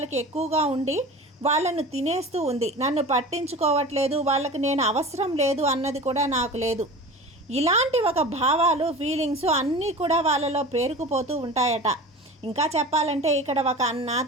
ఎక్కువగా ఉండి వాళ్ళను తినేస్తూ ఉంది. నన్ను పట్టించుకోవట్లేదు, వాళ్ళకి నేను అవసరం లేదు అన్నది కూడా నాకు లేదు. ఇలాంటి ఒక భావాలు, ఫీలింగ్స్ అన్నీ కూడా వాళ్ళలో పేరుకుపోతూ ఉంటాయట. ఇంకా చెప్పాలంటే ఇక్కడ ఒక అన్న,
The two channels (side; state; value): both; normal; correlation 0.35